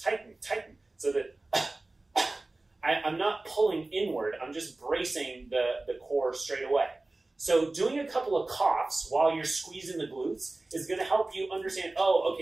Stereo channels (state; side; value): quieter; left; 3.0 dB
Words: tighten. So that I'm not pulling inward, I'm just bracing the core straight away. So doing a couple of coughs while you're squeezing the glutes is going to help you understand, oh,